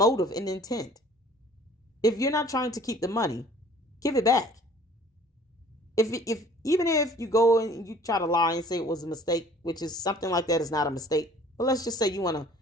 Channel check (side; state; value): both; normal; correlation 0.52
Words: and intent. If you're not trying to keep the money, give it back. Even if you go and you try to lie and say it was a mistake, which is something like that is not a mistake, but let's just say you want to